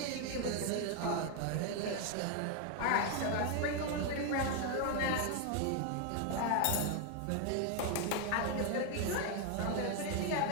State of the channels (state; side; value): different; both; correlation 0.01